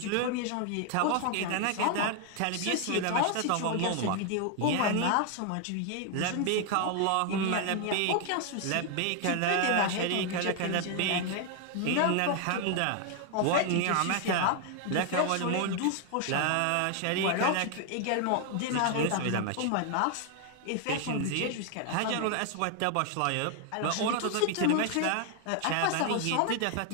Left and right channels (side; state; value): both; different; correlation 0.00